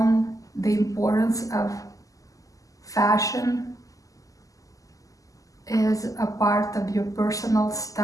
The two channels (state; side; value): late; right; 0.17 ms